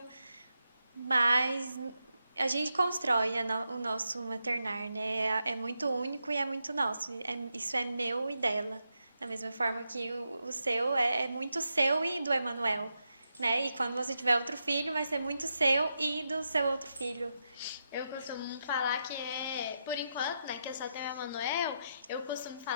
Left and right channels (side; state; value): both; inverted; correlation -0.85